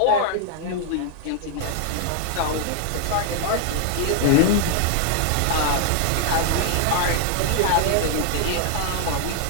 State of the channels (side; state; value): both; different; correlation 0.00